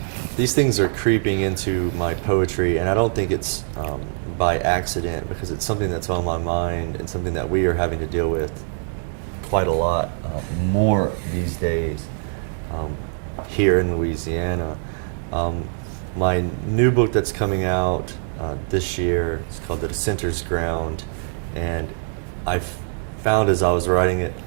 These things are creeping into my poetry, and I don't think it's by accident, because it's something that's on my mind and something that we are having to deal with quite a lot more these days here in Louisiana. My new book that's coming out this year is called The Dissenter's Ground, and I found as I was writing it,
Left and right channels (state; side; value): silent; left; digital silence